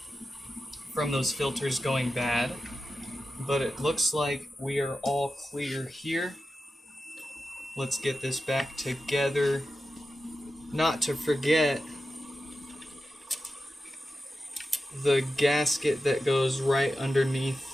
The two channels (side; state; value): both; normal; correlation 0.92